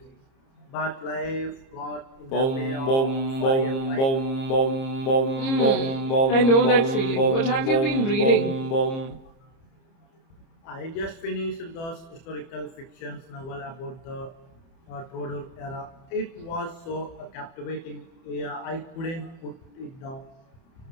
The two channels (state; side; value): late; right; 30 ms